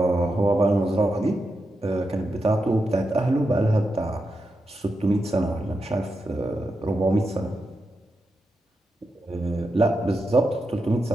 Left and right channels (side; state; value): both; normal; correlation 0.87